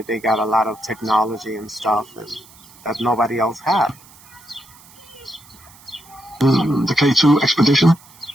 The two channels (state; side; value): noise; right; hiss, 24 dB below the sound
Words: they got a lot of technology and stuff that nobody else had. The K2 expedition.